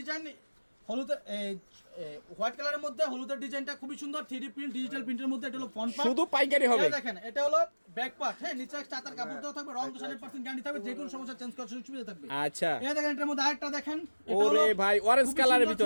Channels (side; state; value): both; inverted; correlation -1.00